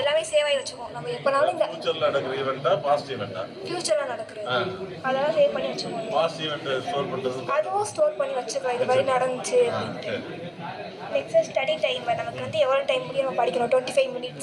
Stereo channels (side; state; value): both; identical; correlation 1.00